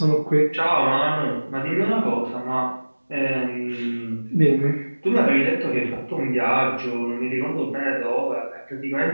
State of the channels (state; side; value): inverted; both; correlation -1.00